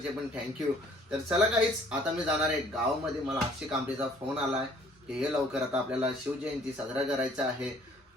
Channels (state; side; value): normal; both; correlation 0.58